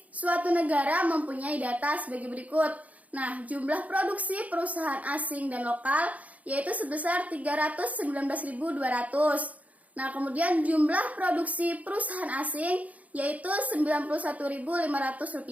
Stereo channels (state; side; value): late; left; 0.071 ms